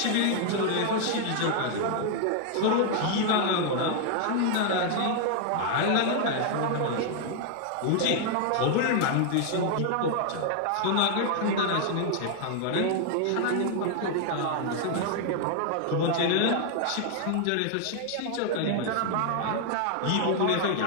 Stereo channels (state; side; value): different; both; correlation 0.00